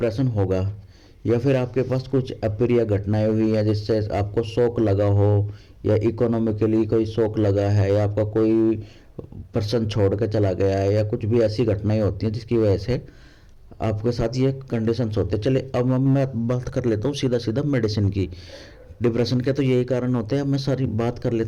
होगा, या फिर आपके पास कुछ अप्रिय घटनाएं हुई हैं जिससे आपको शौक लगा हो, या इकोनॉमिकली कोई शौक लगा है, या आपका कोई पर्सन छोड़ के चला गया है, या कुछ भी ऐसी घटनाएं होती हैं जिसकी वजह से आपके साथ ये कंडीशंस होते हैं। चलिए अब मैं बात कर लेता हूँ सीधा सीधा मेडिसिन की। डिप्रेशन के तो यही कारण होते हैं, अब मैं सारी बात कर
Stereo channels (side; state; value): both; identical; correlation 1.00